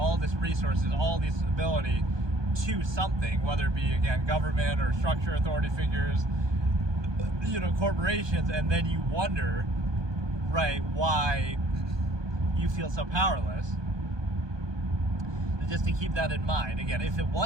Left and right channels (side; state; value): left; late; 1.2 ms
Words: this resources, all this ability to something, whether it be, again, government or structure authority figures, corporations, and then you wonder, right, why you feel so powerless. Just to keep that in mind. Again, if it